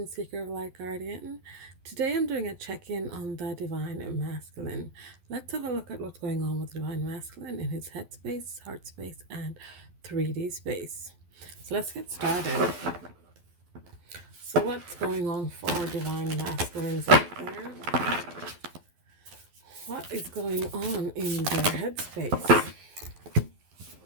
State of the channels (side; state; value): left; late; 12 ms